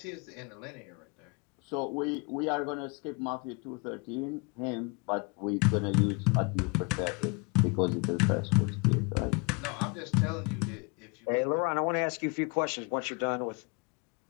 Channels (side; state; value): right; quieter; 31.8 dB